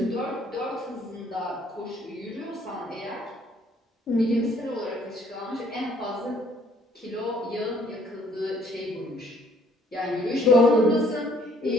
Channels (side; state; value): both; normal; correlation 0.62